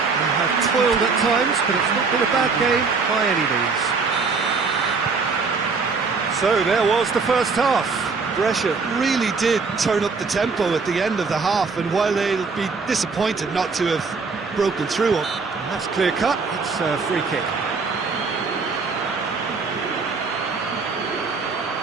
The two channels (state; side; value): quieter; left; 4.7 dB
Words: have toiled at times, but it's not been a bad game by any means. So there was the first half. Brescia really did turn up the tempo at the end of the half, and while they'll be disappointed not to have broken through it. That's clear cut, it's a free kick.